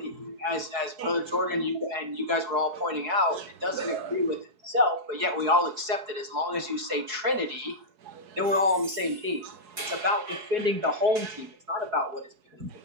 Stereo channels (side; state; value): left; late; 4.7 ms